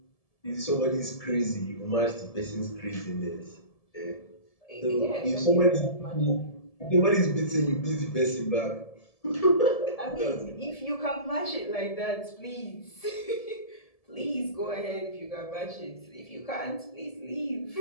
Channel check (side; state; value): right; late; 1.7 ms